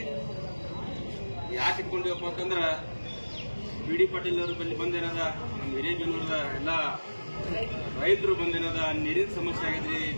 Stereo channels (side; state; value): both; inverted; correlation -1.00